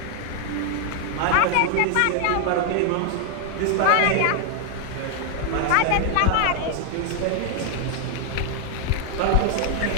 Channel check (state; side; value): different; both; correlation 0.00